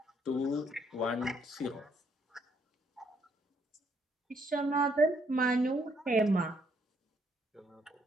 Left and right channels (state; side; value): normal; both; correlation 0.70